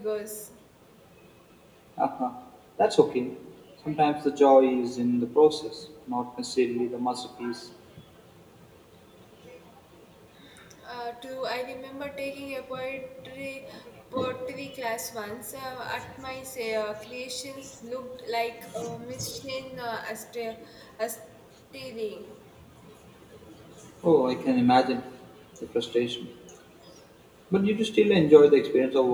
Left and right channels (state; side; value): identical; both; correlation 1.00